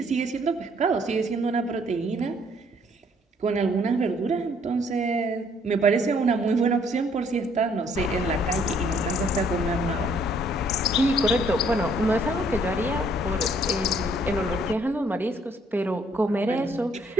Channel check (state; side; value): normal; both; correlation 0.64